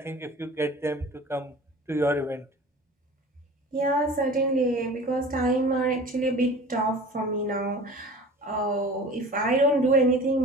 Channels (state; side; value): normal; both; correlation 0.40